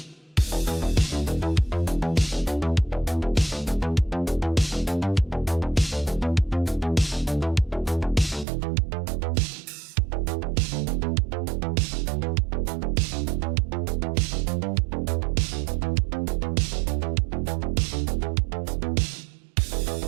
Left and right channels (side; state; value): left; drops out; at 8.5 s